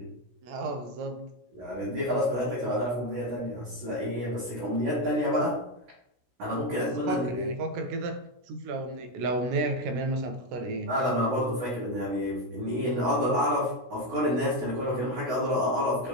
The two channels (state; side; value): late; left; 16 ms